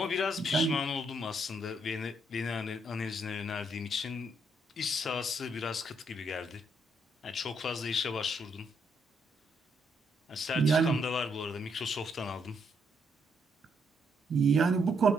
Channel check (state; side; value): normal; both; correlation 0.74